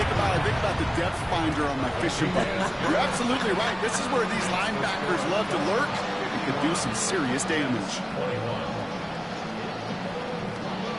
about? I think about the depth finder on my fishing boat. You're absolutely right. This is where these linebackers love to lurk and can do some serious damage.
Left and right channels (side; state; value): both; identical; correlation 1.00